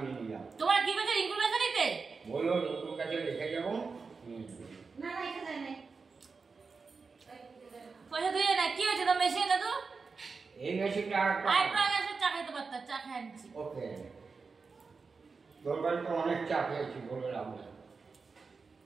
নিয়ে যাও। তোমার কি বলছে রিঙ্কুর কাছে নিতে? বললো রিঙ্কুর কাছে রেখে যাবো। না রেখে দেয় না, পয়সা দিয়ে না কি হয়েছে তো মেশিন না তো এই মেশিনটা আর একটা এসে চা খাইতে পারতাম, চা খাই আনছি। ওকে তোর বাড়িতে অনেক চা খেয়েছি বলে লাভ নেই,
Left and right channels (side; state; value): left; quieter; 4.7 dB